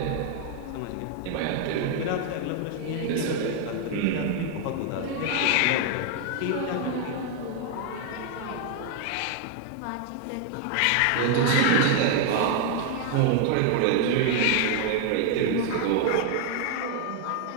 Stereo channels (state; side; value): different; both; correlation 0.00